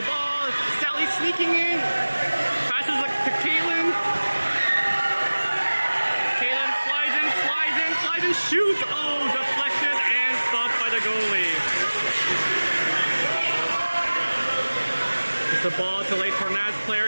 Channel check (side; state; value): both; inverted; correlation -1.00